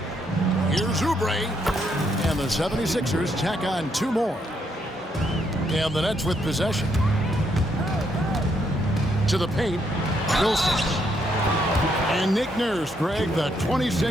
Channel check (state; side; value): normal; both; correlation 0.75